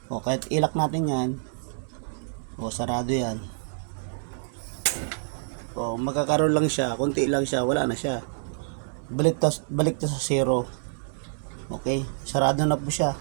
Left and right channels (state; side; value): silent; left; digital silence